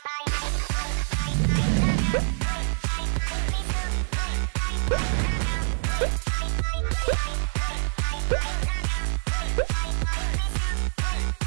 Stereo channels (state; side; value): silent; left; digital silence